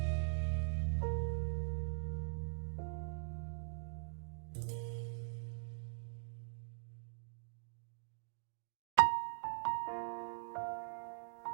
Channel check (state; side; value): silent; left; digital silence